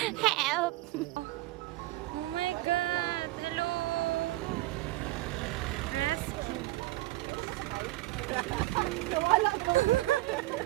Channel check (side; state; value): left; quieter; 18.7 dB